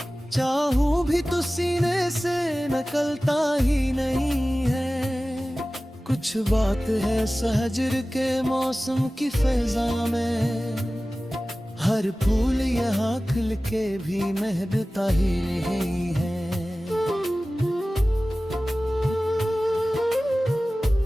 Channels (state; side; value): normal; both; correlation 0.97